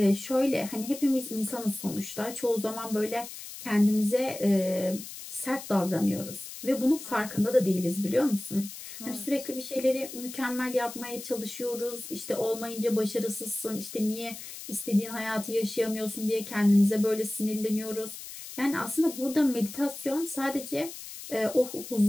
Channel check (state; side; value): noise; left; hiss, 12 dB below the sound